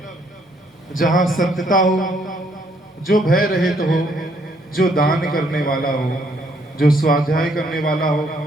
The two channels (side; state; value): both; normal; correlation 0.69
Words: जहां सत्यता हो, जो भय रहित हो, जो दान करने वाला हो, जो स्वाध्याय करने वाला हो,